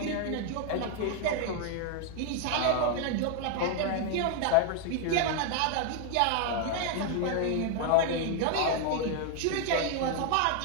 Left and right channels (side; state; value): both; different; correlation 0.00